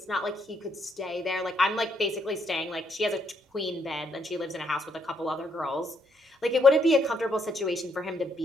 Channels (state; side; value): normal; both; correlation 0.73